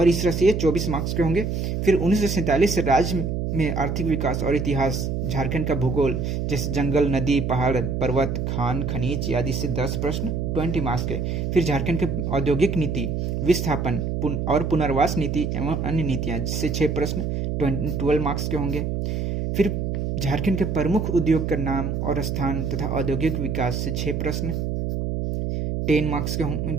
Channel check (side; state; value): right; noise; hum, 1 dB below the sound